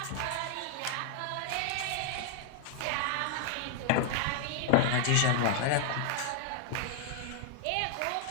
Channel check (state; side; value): different; both; correlation 0.00